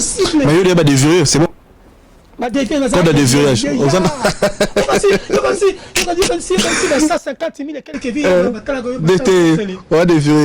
mais il y a des vieux c'est bon Code de déverrouillage. Il y a 150 000 et quelques villes.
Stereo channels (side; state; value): both; identical; correlation 1.00